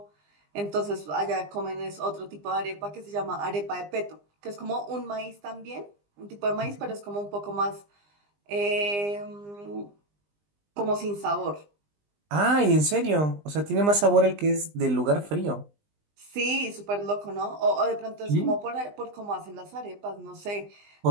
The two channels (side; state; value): left; late; 20 ms